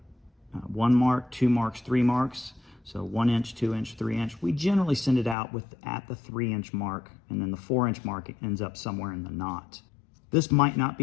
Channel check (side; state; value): right; drops out; at 5.4 s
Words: 1 mark, 2 marks, 3 marks. So 1 inch, 2 inch, 3 inch. We generally send it out at the 3 inch mark, and then the 4 inch mark ends up somewhere in the knot. This might not